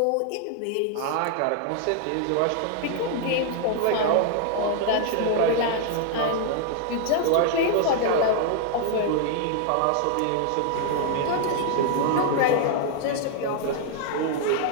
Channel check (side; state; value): both; different; correlation 0.00